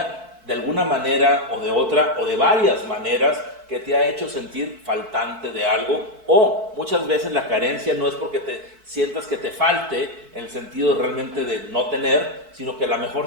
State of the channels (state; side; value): late; left; 4.6 ms